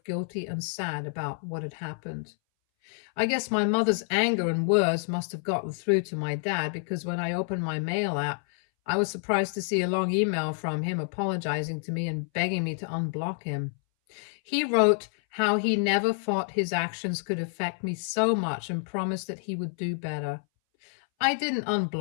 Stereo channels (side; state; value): right; silent; 59 dB below the other